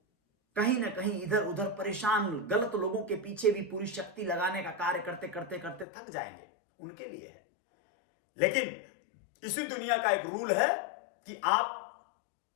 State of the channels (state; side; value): drops out; right; at 5.9 s